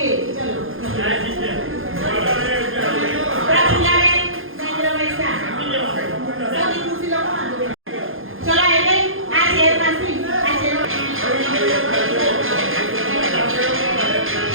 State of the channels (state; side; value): late; left; 0.60 ms